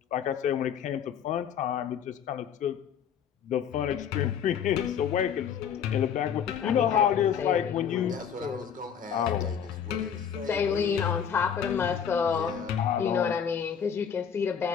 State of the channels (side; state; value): right; quieter; 8.0 dB